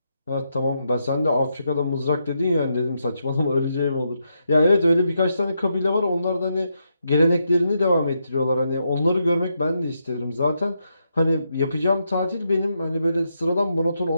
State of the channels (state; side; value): inverted; both; correlation -0.82